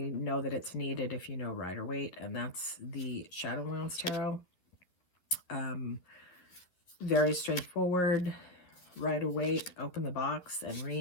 know that it's needed if you know Rider-Waite, and that's the Shadowlands Tarot. Very straightforward. Rider-Waite, open the box and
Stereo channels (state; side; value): late; right; 11 ms